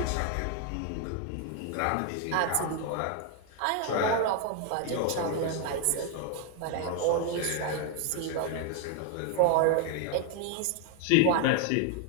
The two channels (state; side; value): different; both; correlation 0.01